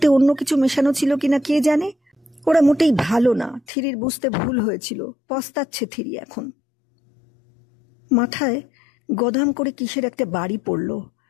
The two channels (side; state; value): right; drops out; at 3.6 s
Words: অন্য কিছু মেশানো ছিল কিনা কে জানে। ওরা মোটেই ভালো না, থিরির বুঝতে ভুল হয়েছিল। পস্তাচ্ছে থিরি এখন। মাথায় গদাম করে কিসের একটা বাড়ি পড়ল।